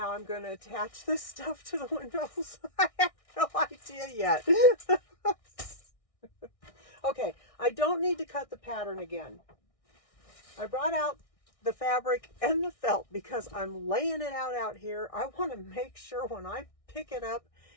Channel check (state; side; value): late; right; 1.6 ms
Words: I'm going to attach this stuff to the windows. I have no idea yet. Okay, I don't need to cut the pattern again. I brought out the fabric and the felt because I'm laying it out here. I want to make sure when I pick it up